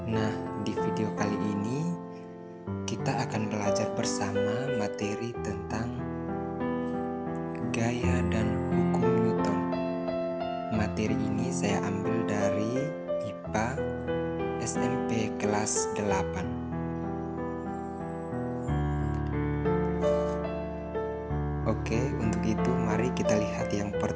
Nah, di video kali ini kita akan belajar bersama materi tentang gaya dan hukum Newton. Materi ini saya ambil dari IPA SMP kelas 8. Oke, untuk itu mari kita lihat yang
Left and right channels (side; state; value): both; identical; correlation 1.00